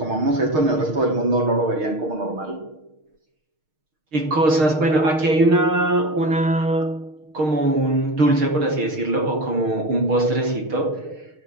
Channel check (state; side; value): late; left; 6.5 ms